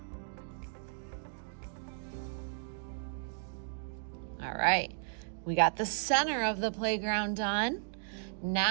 All right, we got the center of the playground done.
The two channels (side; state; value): left; silent; digital silence